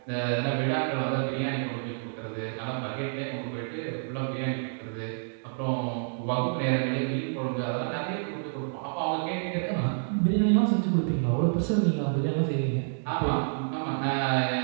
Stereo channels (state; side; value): silent; left; digital silence